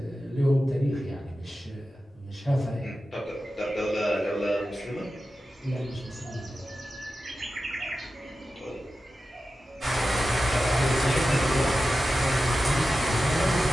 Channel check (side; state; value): both; normal; correlation 0.93